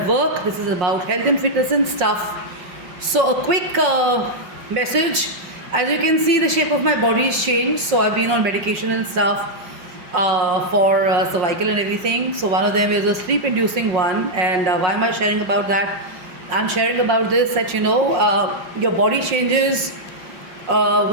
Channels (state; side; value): late; left; 5.5 ms